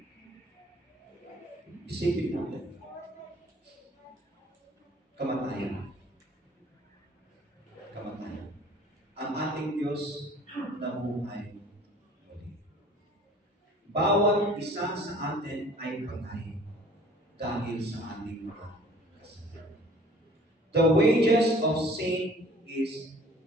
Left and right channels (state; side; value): normal; both; correlation 0.51